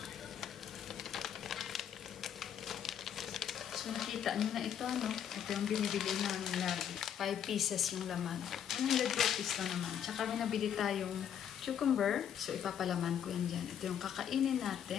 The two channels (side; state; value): right; quieter; 9.0 dB